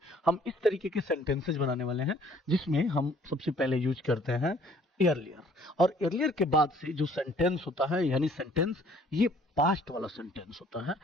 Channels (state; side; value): normal; both; correlation 0.58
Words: हम इस तरीके के सेंटेंसेस बनाने वाले हैं जिसमें हम सबसे पहले यूज करते हैं earlier। और earlier के बाद से जो सेंटेंस होता है यानी सेंटेंस, ये पास्ट वाला सेंटेंस होता है।